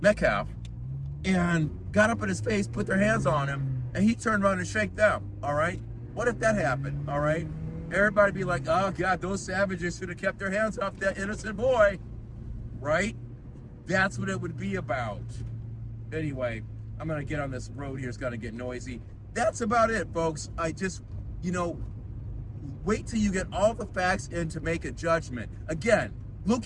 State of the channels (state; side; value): identical; both; correlation 1.00